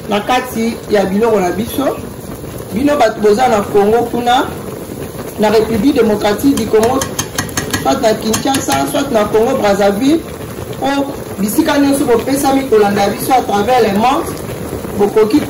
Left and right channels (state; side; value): identical; both; correlation 1.00